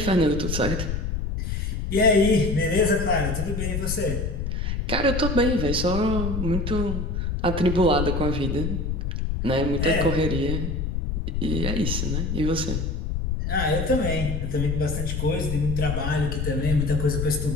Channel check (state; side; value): noise; left; rumble, 2 dB below the sound